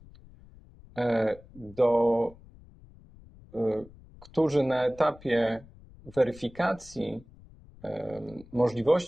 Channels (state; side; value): noise; left; rumble, 22 dB below the sound